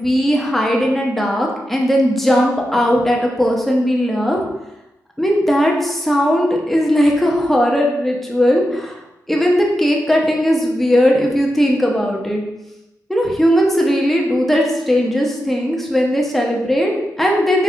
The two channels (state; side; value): normal; both; correlation 0.89